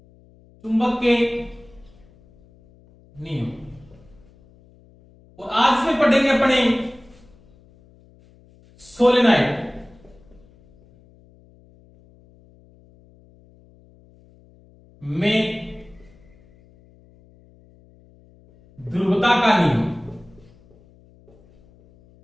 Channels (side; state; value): left; noise; hum, 28 dB below the sound